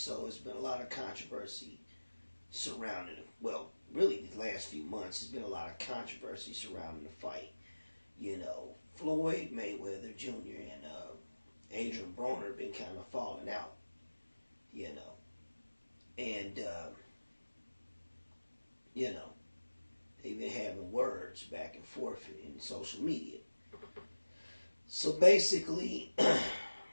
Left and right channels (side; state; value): both; inverted; correlation -1.00